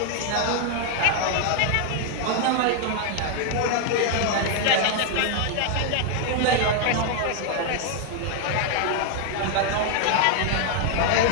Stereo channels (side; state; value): both; different; correlation 0.00